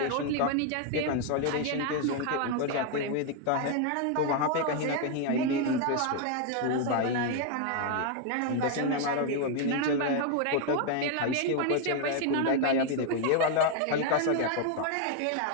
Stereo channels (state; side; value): different; both; correlation 0.01